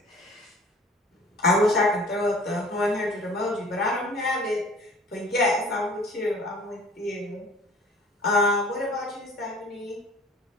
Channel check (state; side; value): normal; both; correlation 0.48